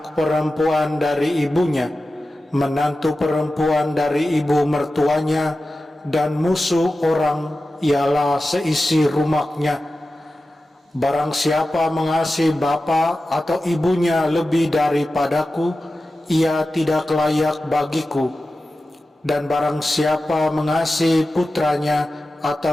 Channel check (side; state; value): both; normal; correlation 0.94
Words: perempuan dari ibunya, menantu perempuan dari ibu mertuanya, dan musuh orang ialah seisi rumahnya. Barang siapa mengasihi bapa atau ibunya lebih daripadaku, ia tidak layak bagiku. Dan barang siapa mengasihi putranya